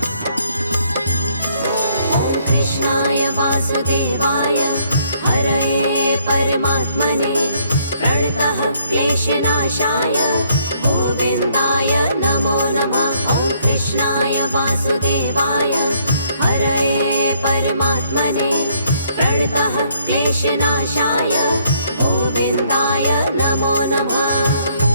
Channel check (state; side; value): inverted; both; correlation -0.67